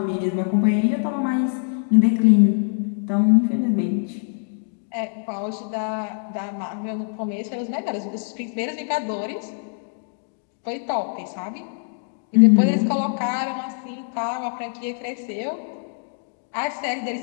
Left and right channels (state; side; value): silent; right; digital silence